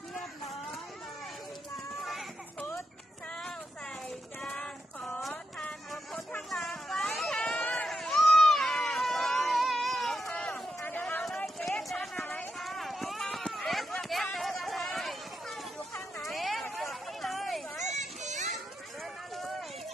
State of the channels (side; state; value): both; normal; correlation 0.84